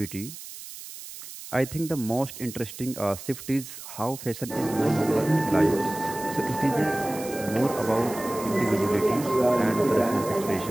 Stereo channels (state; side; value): noise; right; hiss, 13 dB below the sound